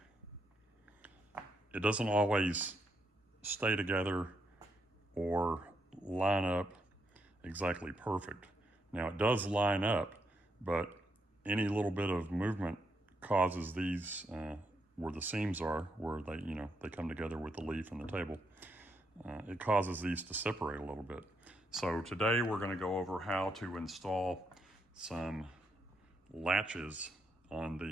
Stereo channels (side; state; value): both; normal; correlation 0.78